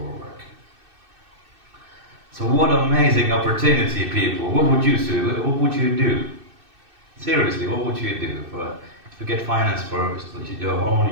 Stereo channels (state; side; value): late; left; 2.6 ms